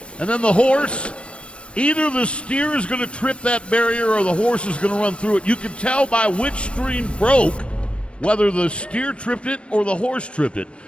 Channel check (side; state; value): right; late; 0.059 ms